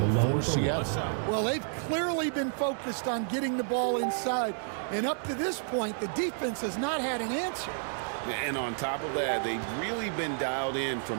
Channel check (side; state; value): left; silent; digital silence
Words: for Seattle. Well, they've clearly been focused on getting the ball inside. And up to this point, the defense has not had an answer. And on top of that, they've really been dialed in